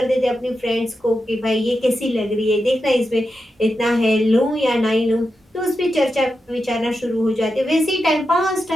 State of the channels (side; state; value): both; normal; correlation 0.88